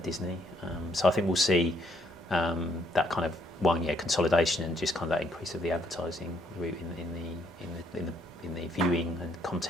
Disney. So I think we'll see that kind of consolidation and just kind of that increase of the advertising route in the viewing and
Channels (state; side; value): normal; both; correlation 0.69